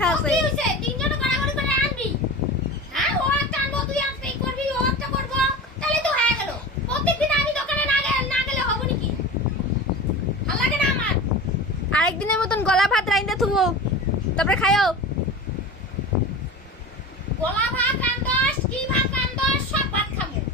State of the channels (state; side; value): normal; both; correlation 0.32